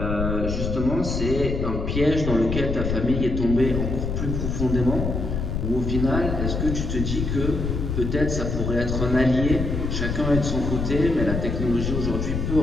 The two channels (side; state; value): left; noise; rumble, 2 dB below the sound